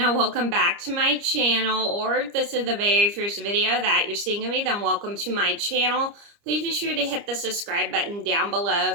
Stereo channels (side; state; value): left; late; 29 ms